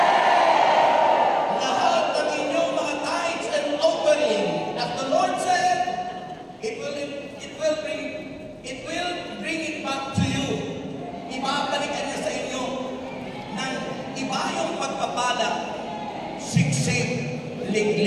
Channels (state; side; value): identical; both; correlation 1.00